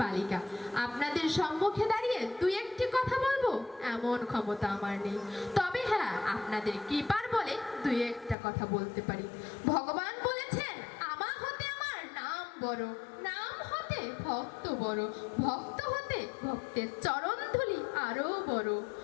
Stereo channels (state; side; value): drops out; right; at 8.3 s